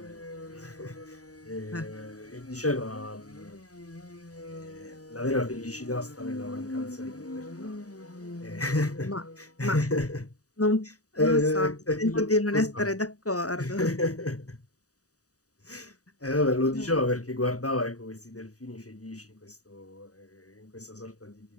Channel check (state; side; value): late; right; 0.66 ms